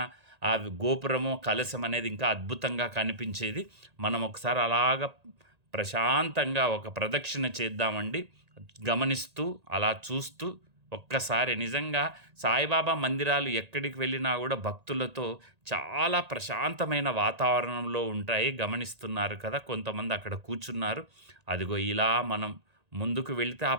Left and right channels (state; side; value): late; left; 1.8 ms